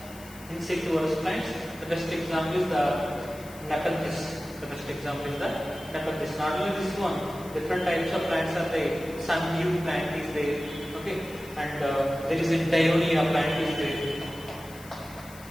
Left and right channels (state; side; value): noise; left; hiss, 20 dB below the sound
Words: insectivorous plants. The best example is the Nepenthes. Not only this one, different types of plants are there. Sundew plant is there, okay, and there is a Dionia plant is there.